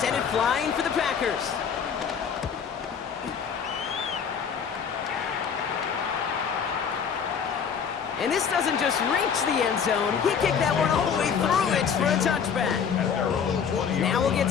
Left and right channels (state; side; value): quieter; right; 7.0 dB